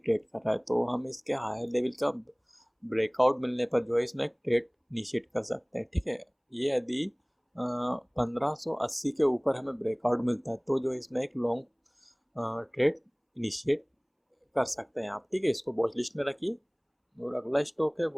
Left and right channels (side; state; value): both; identical; correlation 1.00